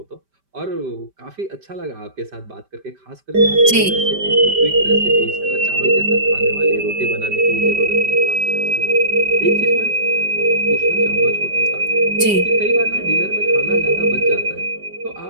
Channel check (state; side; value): late; left; 5.1 ms